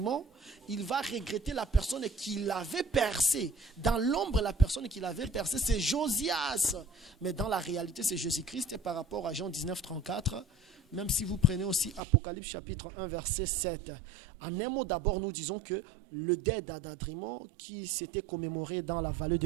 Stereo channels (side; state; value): left; drops out; at 12.0 s